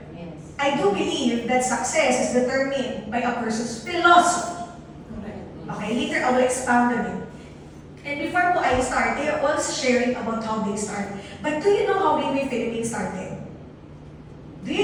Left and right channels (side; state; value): both; identical; correlation 1.00